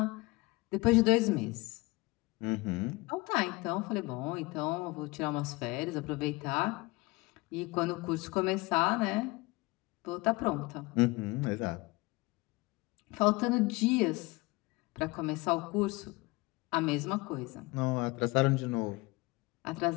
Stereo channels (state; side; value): quieter; right; 23.6 dB